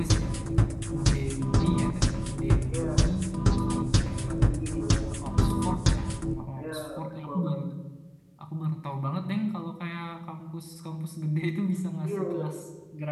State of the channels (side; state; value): both; identical; correlation 1.00